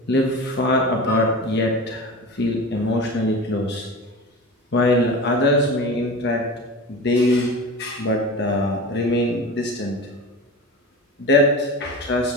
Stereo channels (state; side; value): normal; both; correlation 0.31